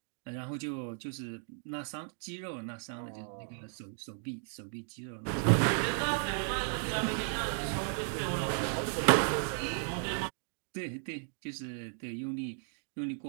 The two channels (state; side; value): silent; left; 54 dB below the other